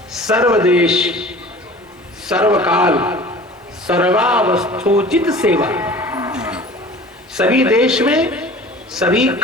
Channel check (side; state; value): both; normal; correlation 0.43